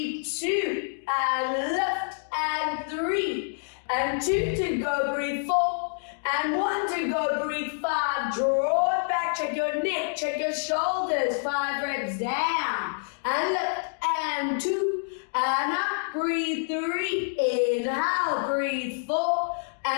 2 and lift, and 3 and 2 to go. Breathe, 4 and 1 to go. Breathe, 5. Draw it back. Check your neck. Check your shoulders. 5 reps down and lift, and 2 and up. Breathe, 3. Inhale. Breathe, 4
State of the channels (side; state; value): right; silent; digital silence